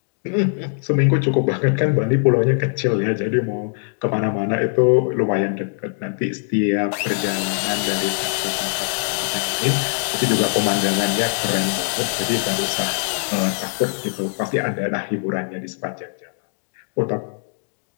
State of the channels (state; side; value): silent; right; digital silence